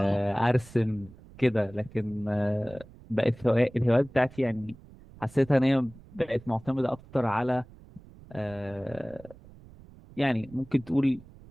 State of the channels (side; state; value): right; noise; rumble, 21 dB below the sound